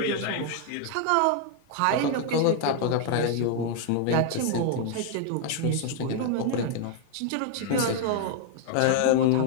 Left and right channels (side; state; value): both; different; correlation 0.00